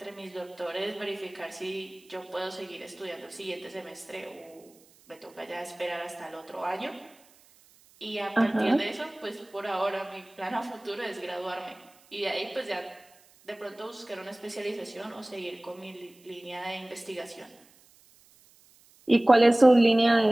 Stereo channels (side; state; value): right; noise; hiss, 28 dB below the sound